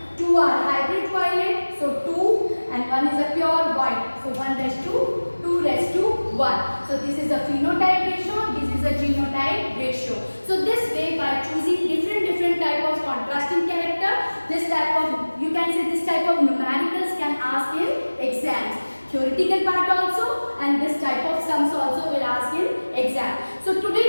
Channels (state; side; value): inverted; both; correlation -1.00